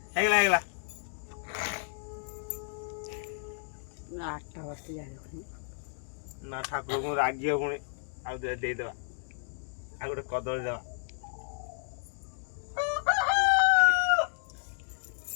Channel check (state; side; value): silent; right; digital silence